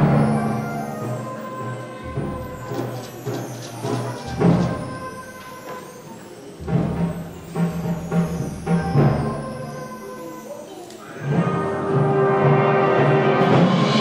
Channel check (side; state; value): both; identical; correlation 1.00